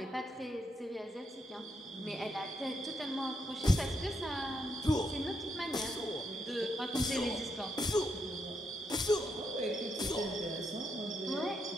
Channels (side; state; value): both; normal; correlation 0.79